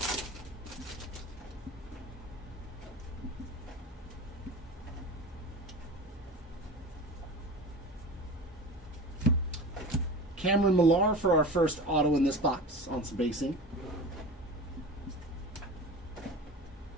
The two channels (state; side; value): normal; both; correlation 0.33